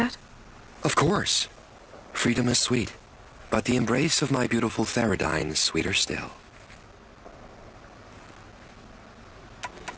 Of course. Freedom is sweet, but the embrace of my beautiful Theridine is sweeter still.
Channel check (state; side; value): identical; both; correlation 1.00